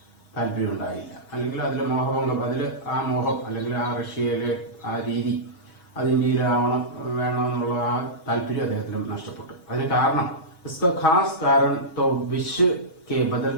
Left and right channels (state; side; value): late; right; 6.3 ms